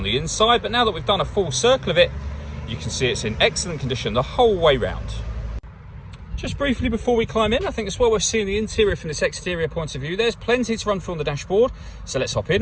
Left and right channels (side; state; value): both; identical; correlation 1.00